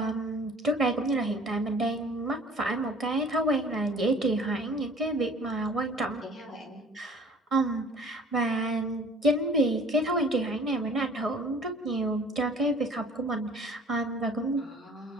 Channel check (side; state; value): both; normal; correlation 0.49